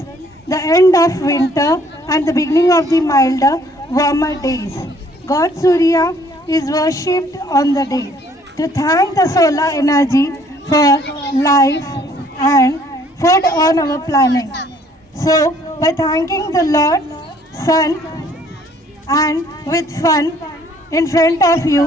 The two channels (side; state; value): both; normal; correlation 0.61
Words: the end of winter and the beginning of the milder, warmer days. God Surya is worshipped on the day to thank the solar energy for life and food on our planet. So, by thanking the Lord, Sun, and with fun in front of you,